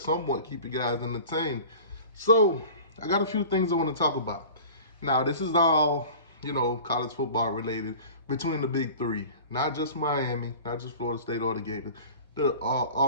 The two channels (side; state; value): both; inverted; correlation -0.40